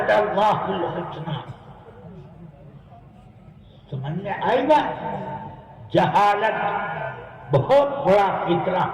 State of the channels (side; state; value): both; identical; correlation 1.00